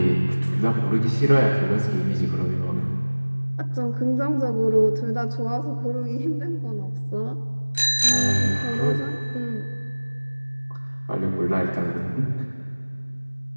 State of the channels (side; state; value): both; inverted; correlation -1.00